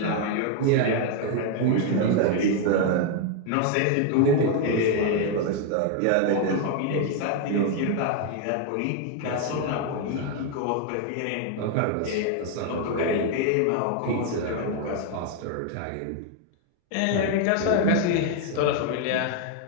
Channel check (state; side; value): different; both; correlation 0.01